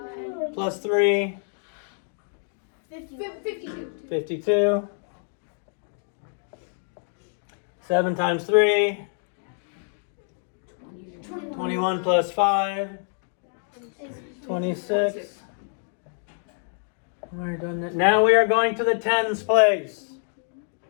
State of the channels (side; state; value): right; silent; 58 dB below the other